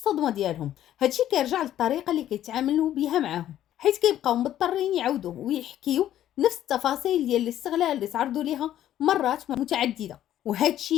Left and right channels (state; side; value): quieter; right; 12.0 dB